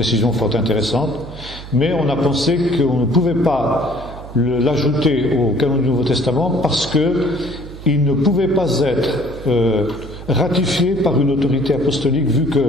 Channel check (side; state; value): right; noise; hum, 14 dB below the sound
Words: fort intéressantes, mais on a pensé qu'on ne pouvait pas l'ajouter au canon du Nouveau Testament parce qu'il ne pouvait pas être ratifié par une autorité apostolique, vu